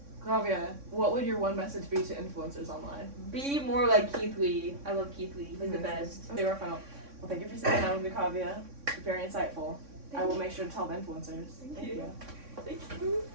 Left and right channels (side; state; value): left; late; 3.6 ms